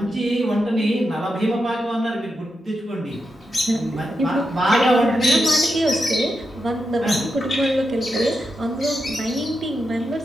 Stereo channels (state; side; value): normal; both; correlation 0.87